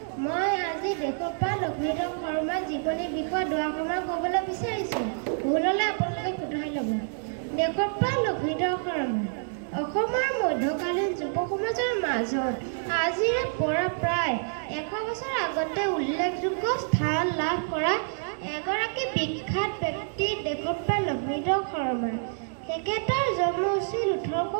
মই আজি দেশৰ পৰা লক্ষ্মীধৰ শৰ্মাৰ জীৱনী বিষয়ে দুআষাৰমান ক'বলৈ বিচাৰিছোঁ। ভুল হ'লে আপোনালোকে শুধৰাই ল'ব। দেশৰ পৰা লক্ষ্মীধৰ শৰ্মা অসমৰ মধ্যকালীন যুৱ সমাজৰ মাজত আজিৰে পৰা প্ৰায় 100 বছৰ আগতে উল্লেখযোগ্য স্থান লাভ কৰা এগৰাকী বিখ্যাত ব্যক্তি দেশৰ পৰা লক্ষ্মীধৰ শৰ্মা। তেখেতৰ জন্ম হৈছিল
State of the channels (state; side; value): silent; left; digital silence